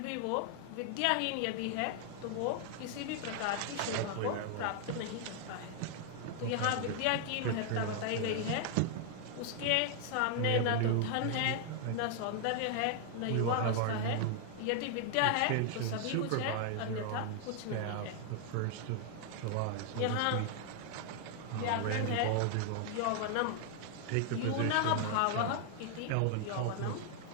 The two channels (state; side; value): different; both; correlation 0.00